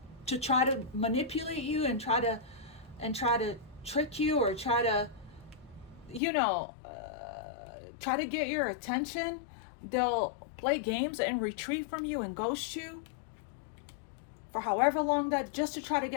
to try to manipulate you and try to trick you, or try to, you know, try to get your attention. They'll play games and retreat from you and ghost you for however long, that just to try to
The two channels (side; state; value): right; drops out; at 6.2 s